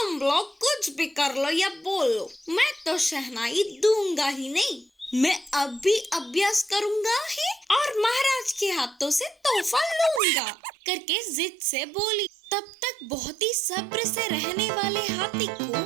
लोग कुछ भी कर लो या बोलो, मैं तो शहनाई दूंगा ही नहीं। मैं अब भी अभ्यास करूंगा ही और महाराज के हाथों से तोहफा लूंगा करके जिद से बोली। तब तक बहुत ही सब्र से रहने वाले हाथी को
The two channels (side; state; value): left; drops out; at 10.2 s